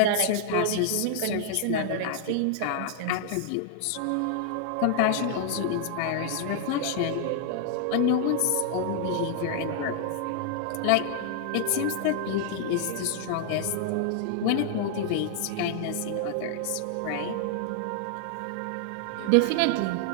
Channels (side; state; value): both; different; correlation 0.00